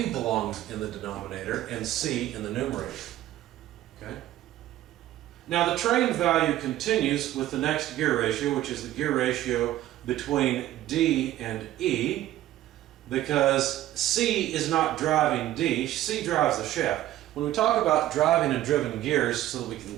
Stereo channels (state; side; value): quieter; left; 14.1 dB